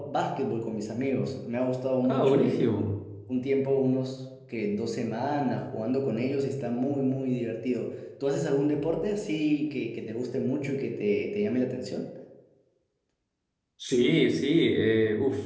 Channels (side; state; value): both; identical; correlation 1.00